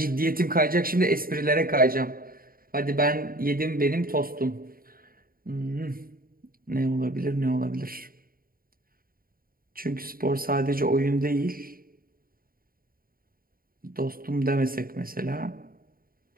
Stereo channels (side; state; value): left; late; 0.42 ms